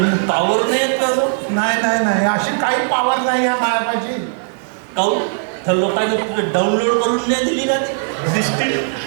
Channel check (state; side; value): silent; left; 57 dB below the other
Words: पॉवर नाही आहे त्याजवळ. नाही नाही नाही, अशी काही पावर नाही आहे मायापाशी. काहून? त्या लोकांनी तुला डाउनलोड करून नाही दिली का सिस्टीम?